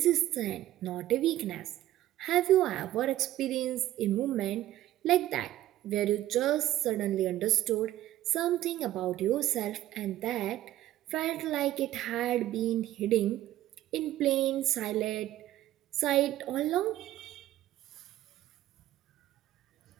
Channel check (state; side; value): quieter; left; 14.1 dB